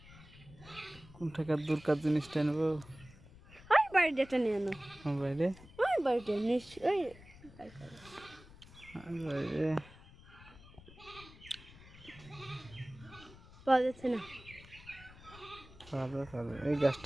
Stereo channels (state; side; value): noise; left; rumble, 20 dB below the sound